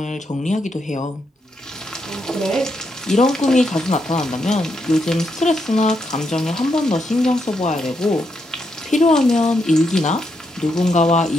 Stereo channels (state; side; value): normal; both; correlation 0.80